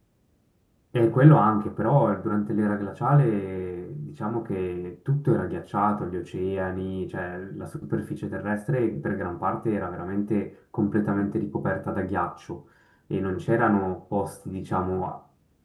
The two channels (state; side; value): identical; both; correlation 1.00